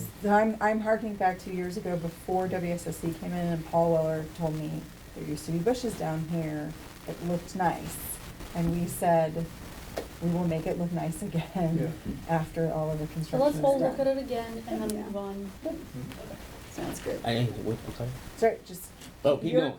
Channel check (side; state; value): both; identical; correlation 1.00